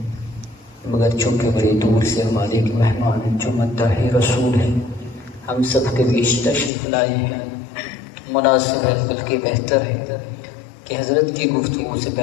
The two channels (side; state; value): right; drops out; at 6.7 s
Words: مگر چونکہ بڑی دور سے ہمارے ایک مہمان جو مداح رسول ہیں ہم سب کے بیچ تشریف لائے ہیں، مناسب ہے بلکہ بہتر ہے کہ حضرت کی گفتگو سے